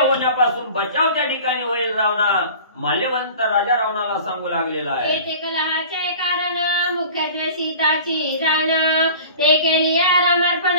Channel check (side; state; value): both; inverted; correlation -0.42